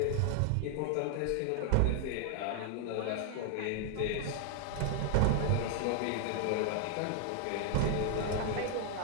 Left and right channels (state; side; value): different; both; correlation 0.00